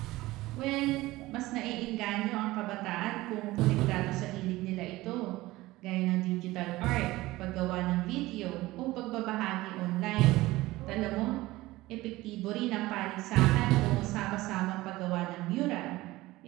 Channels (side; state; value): left; quieter; 18.6 dB